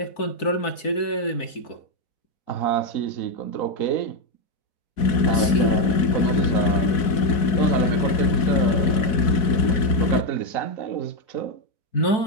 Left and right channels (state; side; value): late; right; 4.6 ms